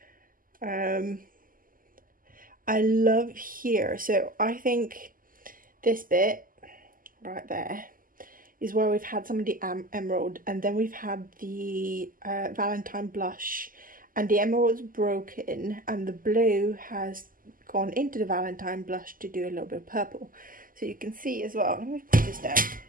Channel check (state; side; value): late; left; 0.41 ms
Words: I love here. So I think this bit right there is where we've had some of the emerald, and then we've had the Valentine blush, and the emerald's broken and the blue has gone into the Valentine blush to do a little bit of purple. So you can see as well, let me put this down.